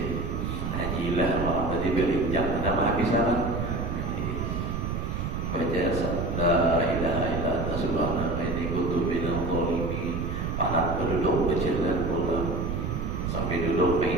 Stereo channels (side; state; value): right; noise; rumble, 2 dB below the sound